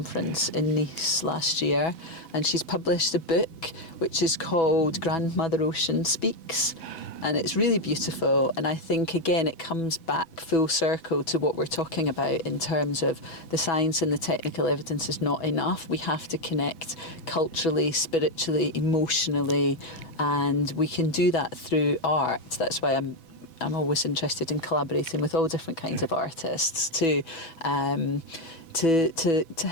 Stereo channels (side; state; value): right; late; 6.1 ms